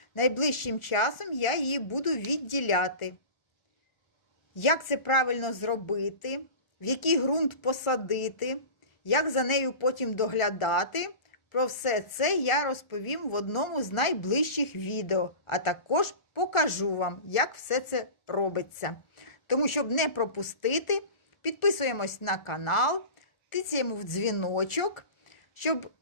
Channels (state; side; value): late; right; 1.4 ms